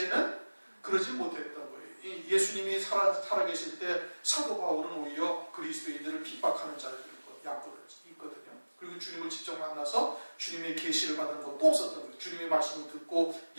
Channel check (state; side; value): inverted; both; correlation -1.00